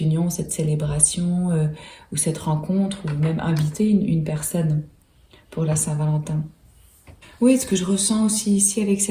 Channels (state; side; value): identical; both; correlation 1.00